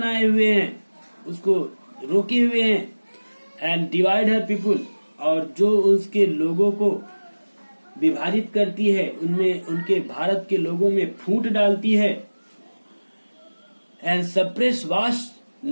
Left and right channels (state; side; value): inverted; both; correlation -1.00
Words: हुए हैं, उसको रोके हुए हैं। एंड डिवाइड हर पीपुल, और जो उसके लोगों को विभाजित करती है, उनमें, उनके भारत के लोगों में फूट डालती है। And suppress vast